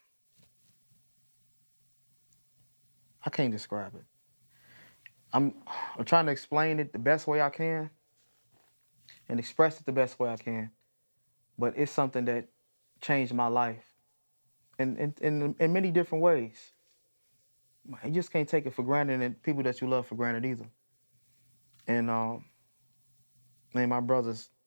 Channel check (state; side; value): inverted; both; correlation -1.00